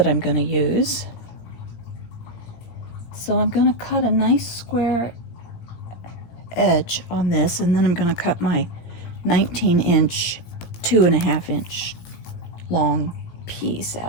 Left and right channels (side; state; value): right; late; 18 ms